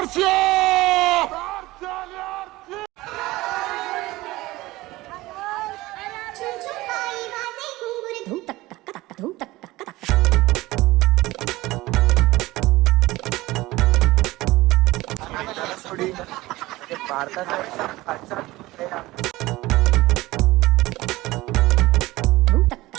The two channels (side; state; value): left; quieter; 19.0 dB